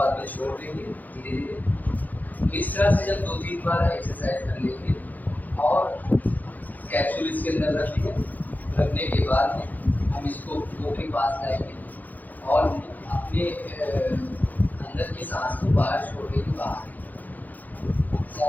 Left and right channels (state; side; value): late; right; 0.082 ms